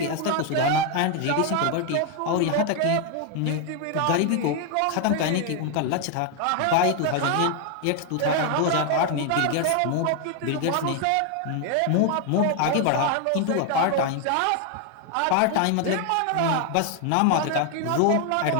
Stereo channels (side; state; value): both; different; correlation 0.01